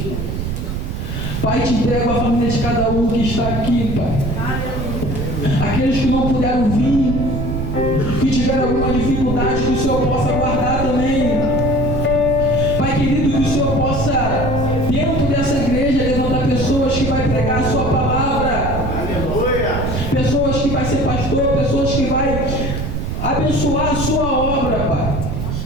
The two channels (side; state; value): right; noise; rumble, 3 dB below the sound